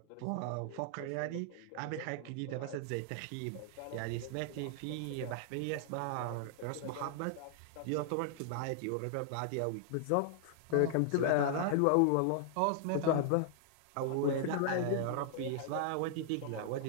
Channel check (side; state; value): both; different; correlation -0.01